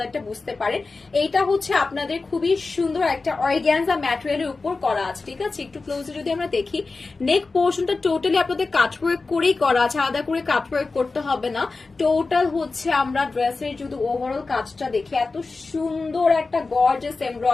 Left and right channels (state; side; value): quieter; right; 3.9 dB